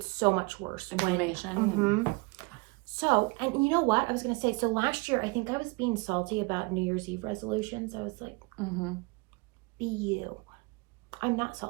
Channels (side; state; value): left; quieter; 27.8 dB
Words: so much worse. Inflammation. So, and you know what? I was going to say, so last year, I think I was being salty about New Year's Eve resolutions. I was like, be you. I'm not